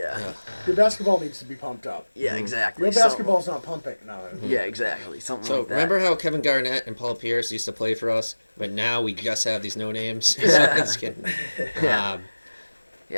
Your basketball needs to be pumped up. exactly. Your So- basketball's not pumping. No. yeah, exactly. Something So like that. remember how Kevin Garnett and Paul Pierce used to play for us, but now we just have these no names. So Yeah. just kidding. Yeah.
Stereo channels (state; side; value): inverted; both; correlation -1.00